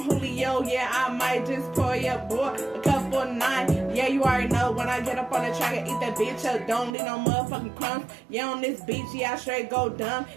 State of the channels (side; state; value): left; drops out; at 7.0 s